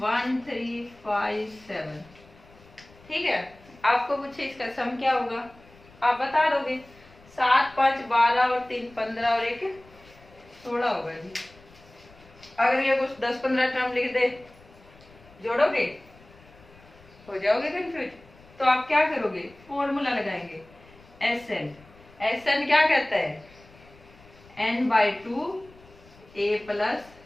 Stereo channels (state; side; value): noise; left; rumble, 25 dB below the sound